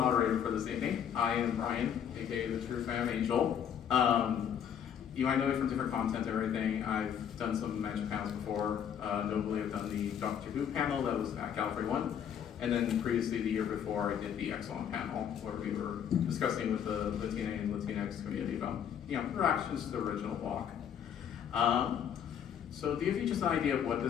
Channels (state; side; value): quieter; right; 8.7 dB